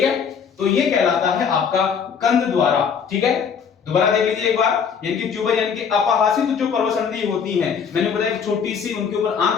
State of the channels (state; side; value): quieter; right; 6.7 dB